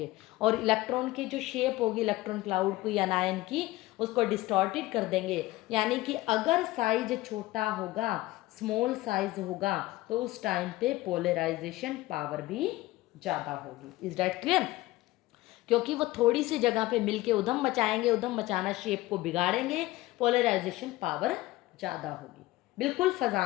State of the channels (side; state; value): right; quieter; 18.3 dB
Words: और इलेक्ट्रॉन की जो शेप होगी इलेक्ट्रॉन क्लाउड की या आयन की, उसको डिस्टॉर्टेड कर देंगे। यानी कि अगर साइज छोटा होगा, स्मॉल साइज होगा, तो उस टाइम पे पोलराइजेशन पावर भी ज़्यादा होगी। Is that clear? क्योंकि वो थोड़ी सी जगह पे मिलके उधम मचाएंगे, उधम मचाना शेप को बिगाड़ेंगे, पोलराइजेशन पावर ज़्यादा होगी। बिल्कुल